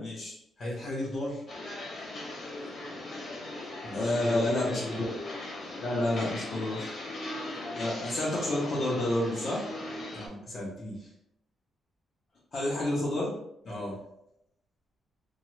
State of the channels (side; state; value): both; normal; correlation 0.82